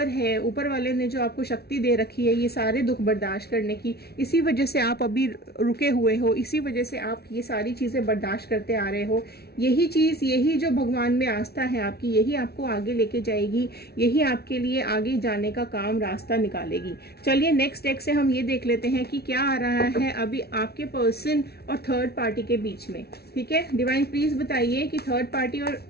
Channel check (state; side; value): late; right; 0.46 ms